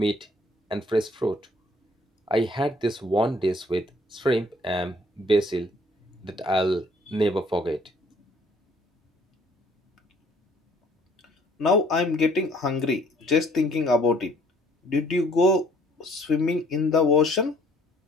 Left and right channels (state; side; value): normal; both; correlation 0.60